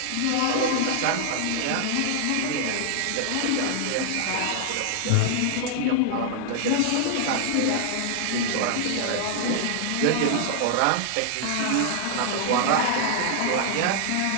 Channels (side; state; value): both; different; correlation 0.00